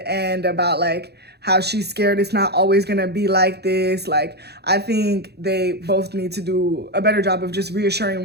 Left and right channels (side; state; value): left; late; 0.48 ms